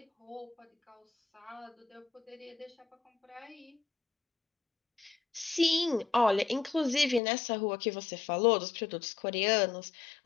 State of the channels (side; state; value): right; drops out; at 7.2 s